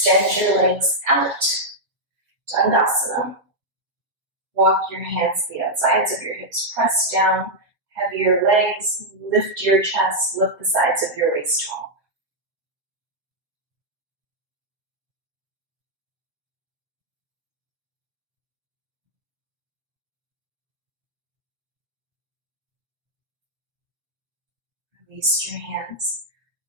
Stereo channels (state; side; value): late; left; 7.2 ms